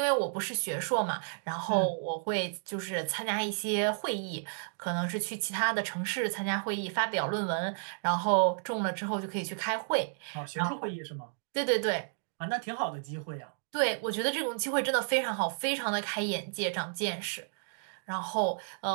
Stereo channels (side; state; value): left; silent; digital silence